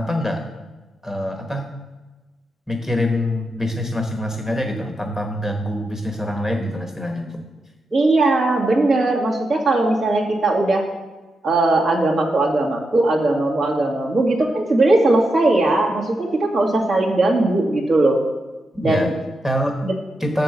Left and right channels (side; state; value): both; normal; correlation 0.86